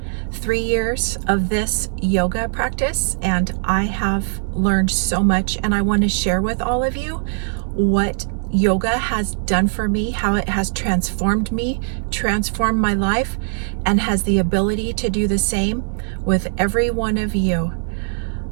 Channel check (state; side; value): silent; left; digital silence